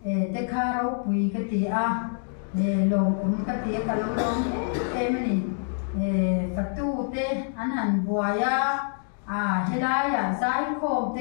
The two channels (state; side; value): silent; right; digital silence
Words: tê khá rau quỳ cái tì lồng cũng cái tì cái lồng em này phật tu tê anh hành bùa helai zai khom